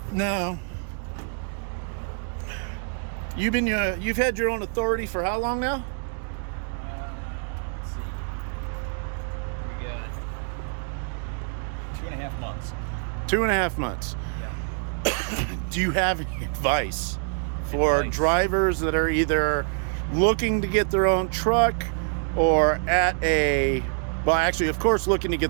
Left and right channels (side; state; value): left; silent; 58 dB below the other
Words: now you've had your own authority for how long now? Let's see. We got 2.5 months. 2.5 months. Yeah. Do you have any advice for drivers that are either looking to get their own truck or actually, of course, looking to